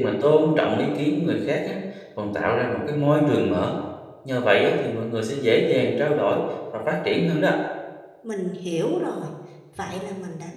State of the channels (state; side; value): identical; both; correlation 1.00